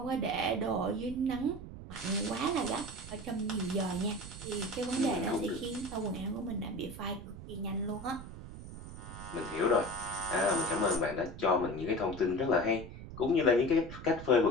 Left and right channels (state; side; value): noise; right; rumble, 12 dB below the sound